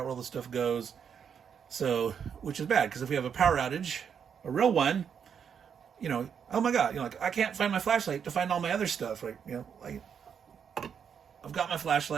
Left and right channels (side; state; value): left; quieter; 7.4 dB